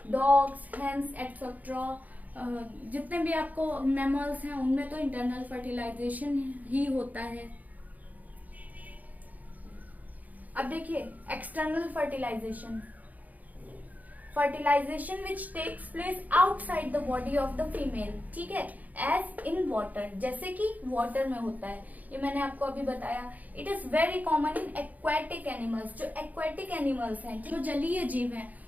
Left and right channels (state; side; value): late; left; 0.078 ms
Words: dogs, hens etcetera. जितने भी आपको मैमल्स हैं उनमें तो इंटरनल फर्टिलाइजेशन ही होता है। अब देखिए external fertilisation, fertilisation which takes place outside the body of the female. ठीक है, एज इन वाटर, जैसे कि वाटर में होता है। ये मैंने आपको अभी बताया। It is very common in aquatic animals. जो एक्वेटिक एनिमल्स हैं, जो जलीय जीव हैं,